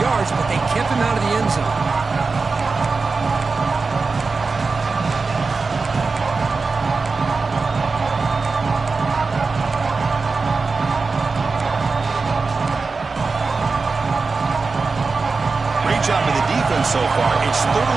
but they kept him out of the end zone. Great job by the defense so far. It's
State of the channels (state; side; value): quieter; left; 4.3 dB